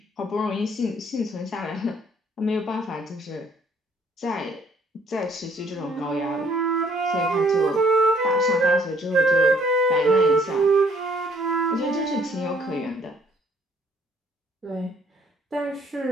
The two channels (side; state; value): both; normal; correlation 0.63